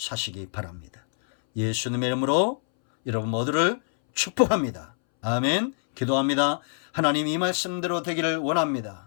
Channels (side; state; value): right; silent; 61 dB below the other